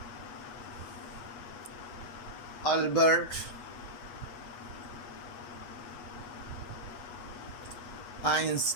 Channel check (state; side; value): late; right; 8.3 ms